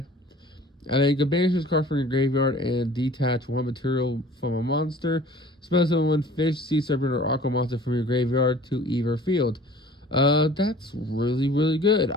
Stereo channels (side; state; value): both; normal; correlation 0.48